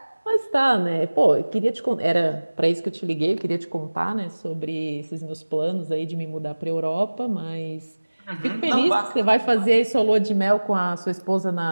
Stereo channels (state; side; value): inverted; both; correlation -1.00